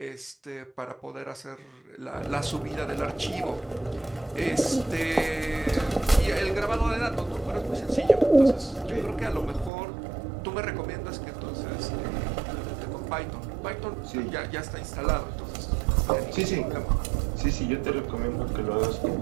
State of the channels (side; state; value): left; drops out; at 9.7 s